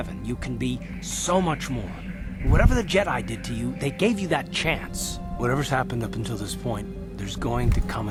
You can be so much more. Whatever the Jedi did to you, they gave you that chance. Whatever's happened up until this point, there's going to come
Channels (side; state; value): both; identical; correlation 1.00